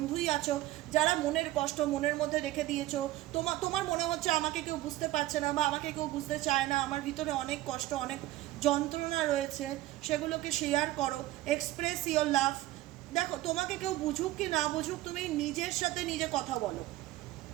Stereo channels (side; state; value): left; quieter; 16.3 dB